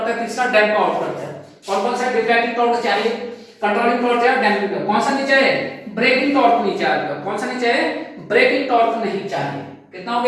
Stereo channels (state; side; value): identical; both; correlation 1.00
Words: है, तीसरा डैम्प आउट करता है। कौन कौन सा डिफ्लेक्टिंग टॉर्क चाहिए, कंट्रोलिंग टॉर्क चाहिए, डैम्पिंग टॉर्क, कौन सा नहीं चाहिए, ब्रेकिंग टॉर्क नहीं चाहिए, कौन सा नहीं चाहिए, ब्रेकिंग टॉर्क नहीं चाहिए। कितना हो